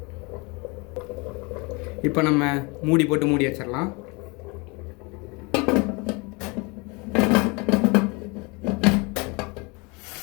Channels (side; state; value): right; quieter; 28.5 dB